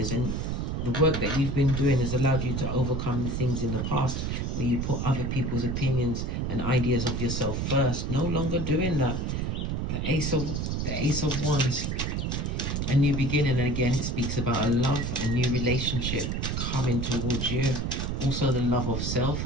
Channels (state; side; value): noise; right; rumble, 1 dB below the sound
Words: and the work that you've been doing has allowed you to overcome the things in the past where you put other people's opinions and ideas of yourself first. No longer doing that. The Ace of Wands, a new beginning. And again, it speaks about a love, a new relationship coming towards you. Also the love of self,